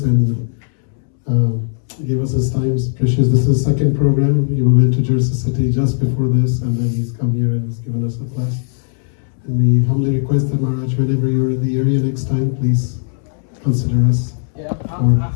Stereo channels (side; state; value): right; silent; 68 dB below the other